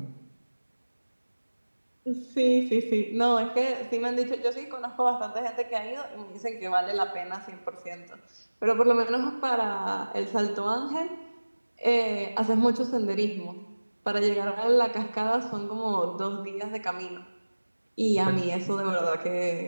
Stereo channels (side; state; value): both; inverted; correlation -1.00